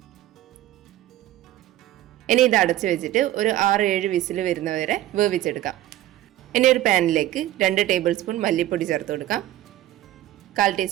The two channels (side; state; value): left; quieter; 14.3 dB